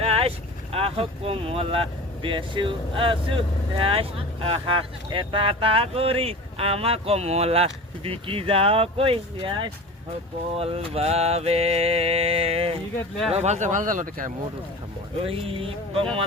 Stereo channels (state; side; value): normal; both; correlation 0.35